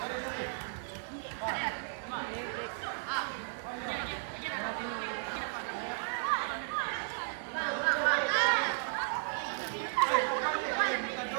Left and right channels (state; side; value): silent; left; digital silence